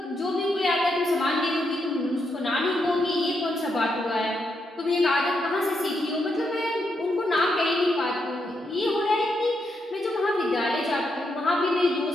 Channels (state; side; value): normal; both; correlation 0.81